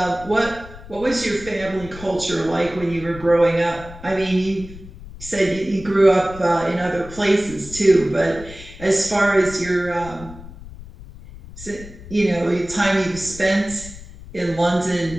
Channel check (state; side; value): noise; left; rumble, 16 dB below the sound